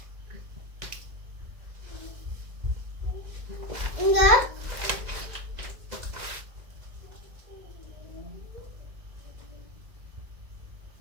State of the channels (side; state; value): left; late; 2.0 ms